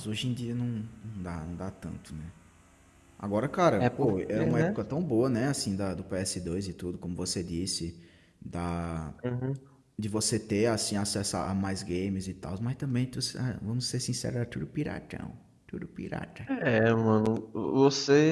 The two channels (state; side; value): identical; both; correlation 1.00